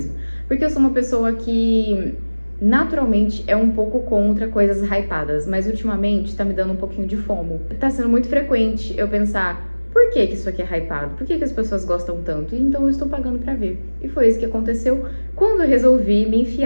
Porque eu sou uma pessoa que naturalmente é um pouco contra coisas hypadas. Mas ultimamente tá me dando um pouquinho de fomo. Tá sendo muito frequente eu pensar, por que isso aqui é hypado? Por que as pessoas gostam tanto? E então eu estou pagando pra ver. E foi isso que aconteceu quando eu resolvi me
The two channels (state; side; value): inverted; both; correlation -1.00